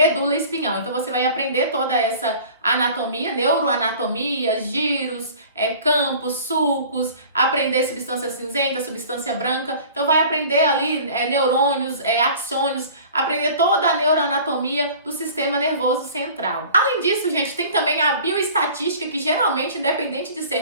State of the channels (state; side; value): inverted; both; correlation -0.45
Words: espinhal. Então você vai aprender toda essa anatomia, neuroanatomia, giros, campos, sulcos, aprender substância cinzenta, substância branca. Então vai aprender ali neurônios, axônios, aprender toda a neuroanatomia do sistema nervoso central. Além disso, gente, tem também a bioestatística, que geralmente, independente de ser